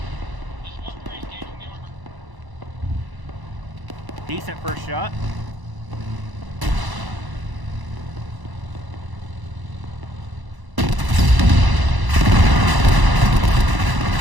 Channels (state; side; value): late; left; 1.0 ms